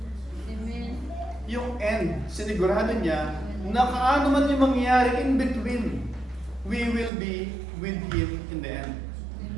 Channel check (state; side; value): drops out; left; at 7.1 s